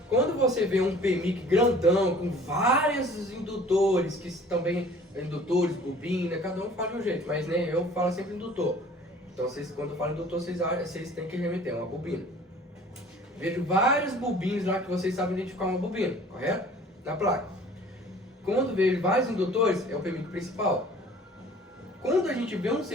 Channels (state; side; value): normal; both; correlation 0.50